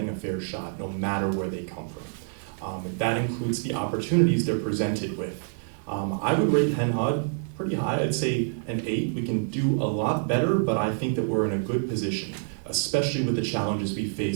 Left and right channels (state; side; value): silent; left; digital silence